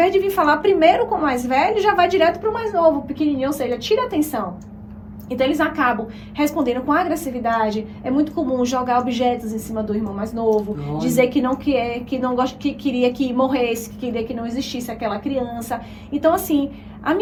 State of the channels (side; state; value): both; identical; correlation 1.00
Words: de vir falar primeiro com o mais velho, já vai direto pro mais novo, pequenininho. Ou seja, tira a atenção. Então, eles acabam respondendo com agressividade. É muito comum jogar objetos em cima do irmão mais novo. Nossa. Dizer que não quer, que não gosta, que queria que morresse, que queria que não existisse aquela criança. Então, assim, a